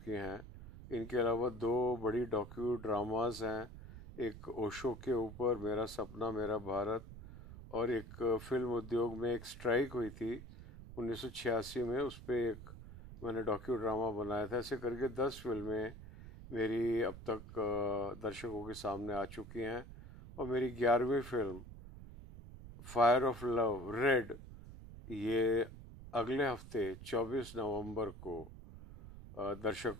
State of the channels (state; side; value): noise; right; rumble, 14 dB below the sound